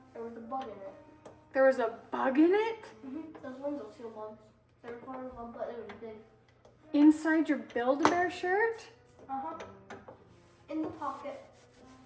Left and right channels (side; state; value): both; identical; correlation 1.00